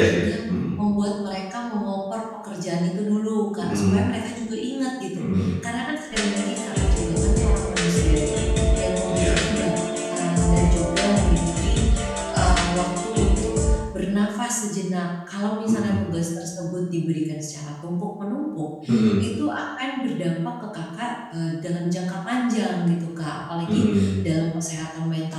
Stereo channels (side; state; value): both; identical; correlation 1.00